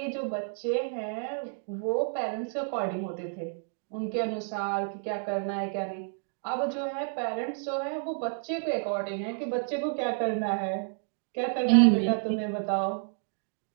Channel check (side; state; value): left; silent; 58 dB below the other